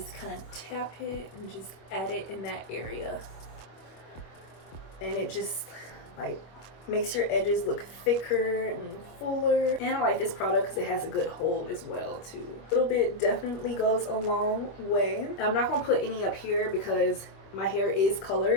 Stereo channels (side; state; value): right; late; 25 ms